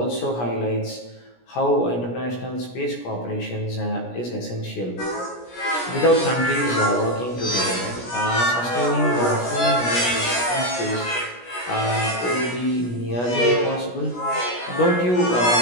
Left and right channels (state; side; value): late; right; 17 ms